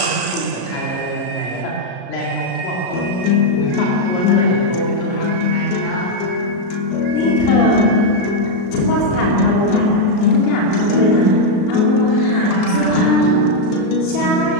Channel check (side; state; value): right; late; 33 ms